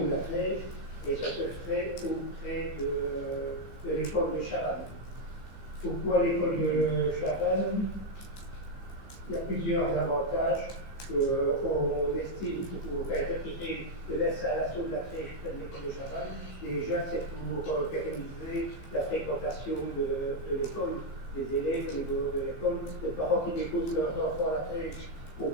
de la crèche, et ça se ferait auprès de l'école de Chavannes. Pourquoi l'école de Chavannes? Il y a plusieurs avantages qu'on estime pour retirer de l'installation de la crèche près de l'école de Chavannes. Déjà, c'est pour pérenniser la fréquentation de l'école, des élèves au niveau de l'école. Les parents qui déposent leurs enfants à la crèche ont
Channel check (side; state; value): right; late; 15 ms